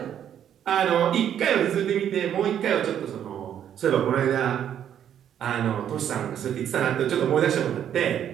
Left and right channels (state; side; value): quieter; left; 9.7 dB